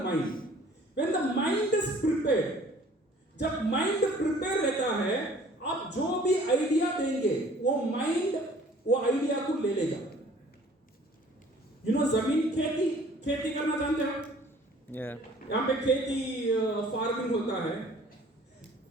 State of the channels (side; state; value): both; normal; correlation 0.53